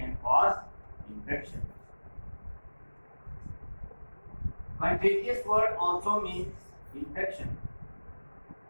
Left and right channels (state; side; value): inverted; both; correlation -1.00